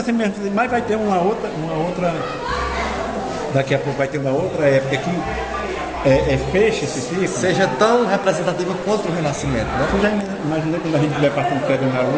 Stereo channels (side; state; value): both; identical; correlation 1.00